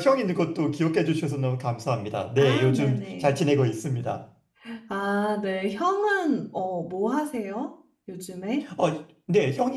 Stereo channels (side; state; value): both; identical; correlation 1.00